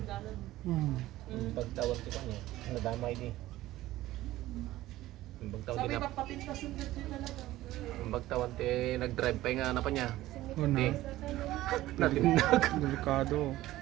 dalan. Mm. Pagtawag ko niya, nadamay di. Ang pagtawag Sabi din ba papintas yung din talaga. ang pagtawag ti nag-drive pa nga na pa niya. Una. Natinag. Delikado.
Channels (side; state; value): left; quieter; 15.9 dB